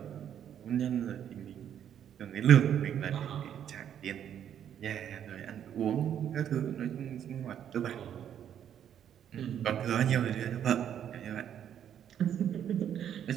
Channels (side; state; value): left; quieter; 9.6 dB